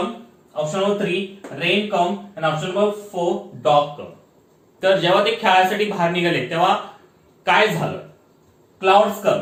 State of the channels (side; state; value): both; identical; correlation 1.00